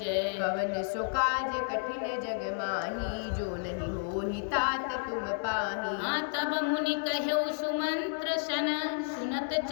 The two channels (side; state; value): right; silent; digital silence